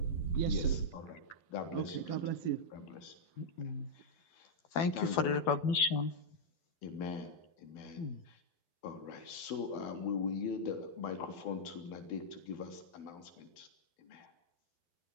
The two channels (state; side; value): late; right; 12 ms